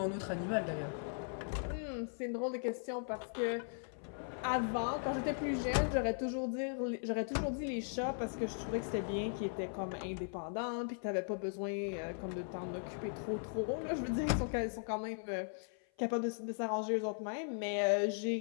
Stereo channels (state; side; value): silent; right; 52 dB below the other